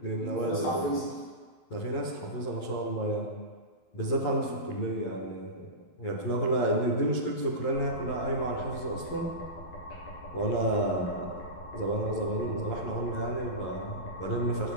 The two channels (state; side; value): late; right; 12 ms